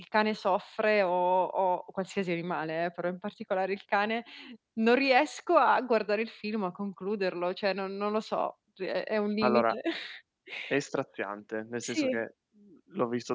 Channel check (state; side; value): identical; both; correlation 1.00